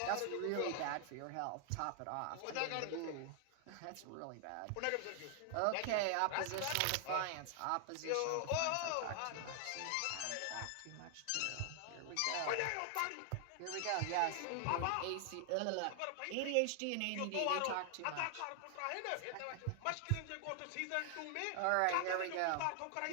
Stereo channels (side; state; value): both; different; correlation 0.00